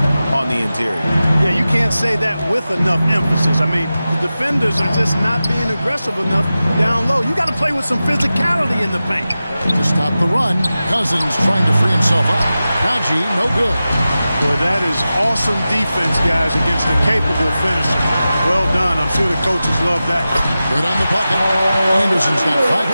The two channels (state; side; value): inverted; both; correlation -0.94